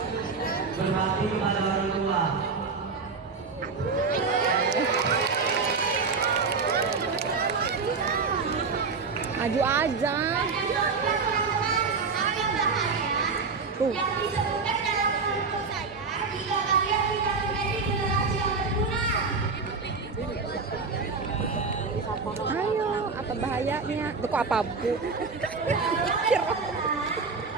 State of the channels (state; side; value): quieter; left; 4.6 dB